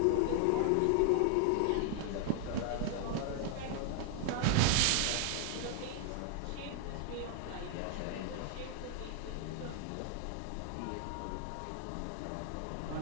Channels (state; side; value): different; both; correlation 0.00